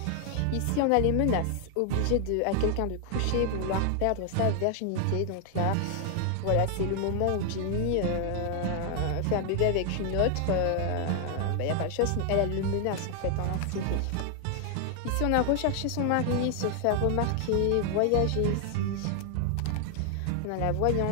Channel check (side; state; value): both; different; correlation 0.00